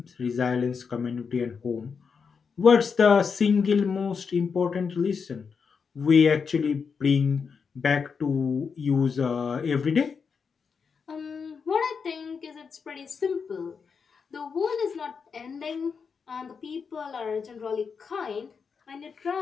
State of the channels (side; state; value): right; quieter; 5.8 dB